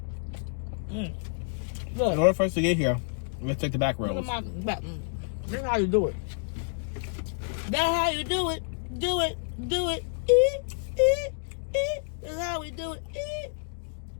Look. In order for us to get here, let's take the back roads. Look at my back. This is how you do it. That's how you do it. Do it. Do it. That's how we do it.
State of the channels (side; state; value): right; silent; digital silence